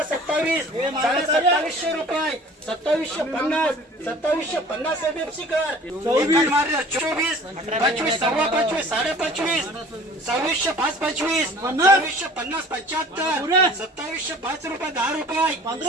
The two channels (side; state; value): both; normal; correlation 0.47